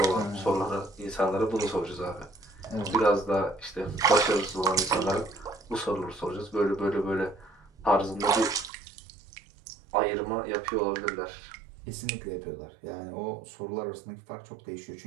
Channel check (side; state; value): left; drops out; at 8.7 s